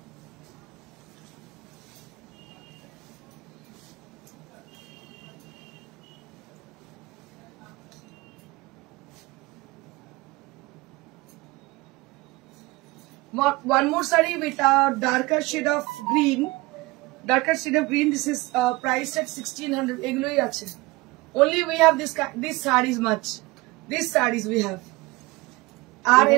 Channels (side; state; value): left; quieter; 22.4 dB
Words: One more saree with a darker shade of green. Darker shade of green. This is priced at 1600. এগুলোই আছে। Only we have this sarees much. These sarees we have. আর